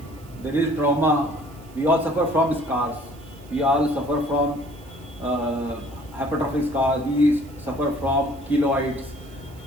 there is trauma, we all suffer from scars. We all suffer from hypertrophic scars. We suffer from keloids.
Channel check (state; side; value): noise; right; hiss, 26 dB below the sound